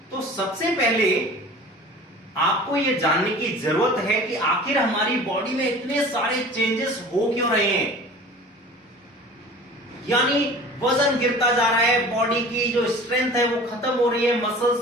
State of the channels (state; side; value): normal; both; correlation 0.42